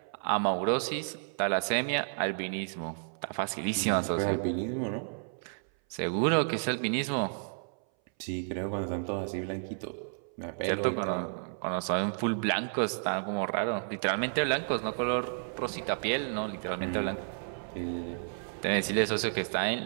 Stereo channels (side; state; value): left; silent; 57 dB below the other